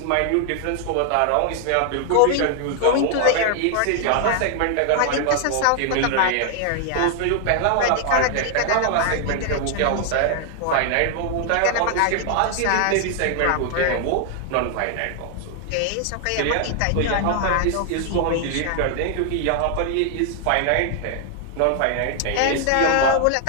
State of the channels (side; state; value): both; different; correlation 0.00